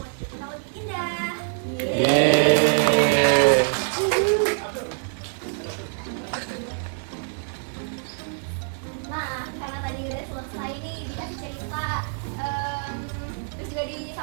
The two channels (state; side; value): silent; left; 62 dB below the other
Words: kita lebih indah. Nah, karena tadi udah selesai nih dikasih cerita, terus juga